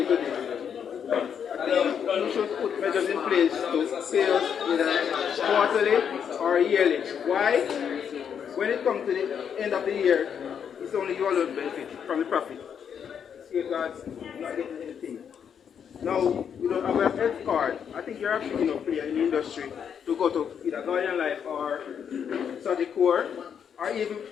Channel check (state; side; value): quieter; right; 7.8 dB